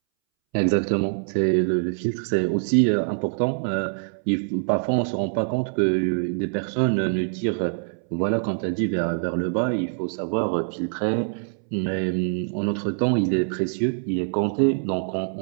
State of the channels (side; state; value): left; silent; 62 dB below the other